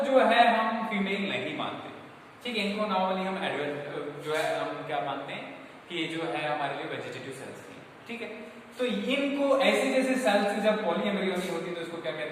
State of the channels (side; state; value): both; identical; correlation 1.00